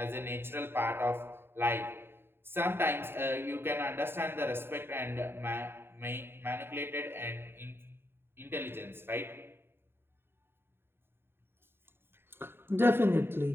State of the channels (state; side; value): late; left; 0.11 ms